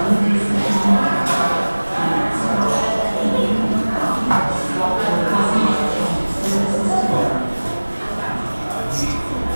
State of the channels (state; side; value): inverted; both; correlation -1.00